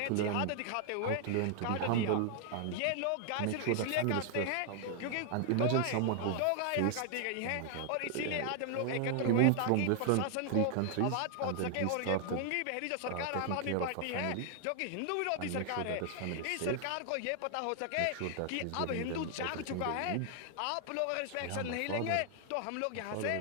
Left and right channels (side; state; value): both; different; correlation 0.00